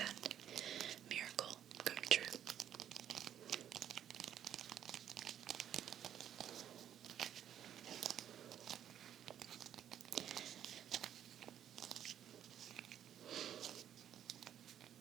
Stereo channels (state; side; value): quieter; left; 10.1 dB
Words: miracle come true.